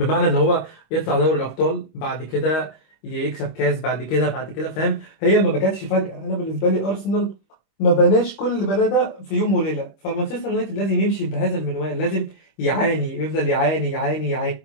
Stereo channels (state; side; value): late; right; 25 ms